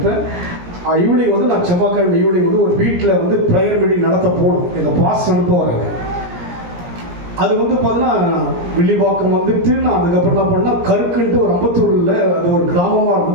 ஈவினிங் நான் செவ்வாய்க்கிழமை ஈவினிங் ஒரு வீட்டில் ப்ரேயர் மீட்டிங் நடத்த போகணும். எங்கள் பாஸ்ட் அனுப்ப வராங்க. அது பார்த்தீங்கன்னா வில்லிவாக்கம் நான் அதுக்கப்புறம் என்ன பண்ணால் கருக்குன்ட்டு ஒரு அம்பத்தூரில் அது ஒரு கிராமமாக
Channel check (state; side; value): late; left; 17 ms